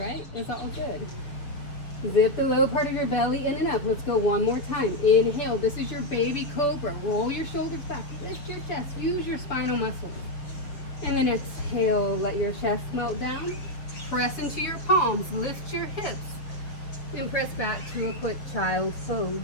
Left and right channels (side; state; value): right; late; 6.9 ms